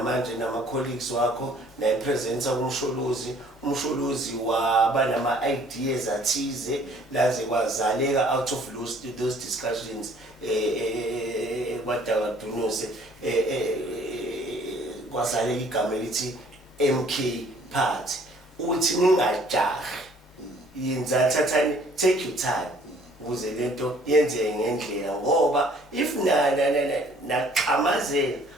manje nama-colleagues wakho nayipresenta umsholozi waba nama-ideas athize laze kwazaleka out of those discussions kwadakadunuse kwazaleka igama elithi MK Party uthi ningajahi yenza thathani take your time ukuze lento yenzeke ngendlela ngoba if naqhamazela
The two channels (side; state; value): both; normal; correlation 0.57